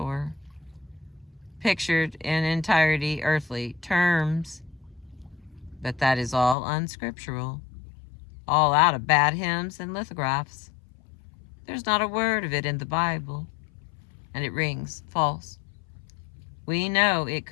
pictured in entirety earthly terms. But that is all unscriptural, all out of bad hymns and lithographs. There's not a word of it in the Bible, and it rings false. We know it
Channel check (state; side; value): drops out; right; at 6.6 s